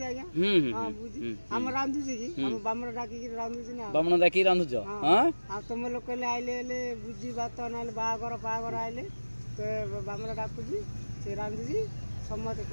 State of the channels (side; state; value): both; inverted; correlation -1.00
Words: आज्ञा हां बुझी हम रांधु छी कि हम बामर डाकी कि रांधु छी ना बामन डाकी रांधु छ हां आ तुम लोक ले आइले ले बुझी बात नाले बागर पागर आइले तो बामर डाकु छी से रांधु छी समत